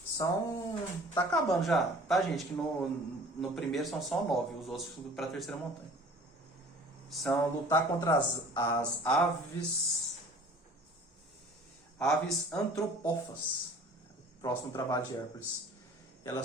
Tá acabando já, tá, gente? Que no primeiro são só 9, os outros para a terceira montanha. São lutar contra as aves antropófagas. Próximo trabalho de Hércules.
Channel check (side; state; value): both; normal; correlation 0.47